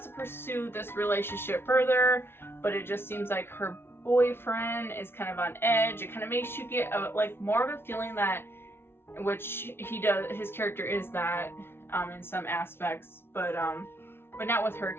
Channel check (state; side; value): late; right; 0.11 ms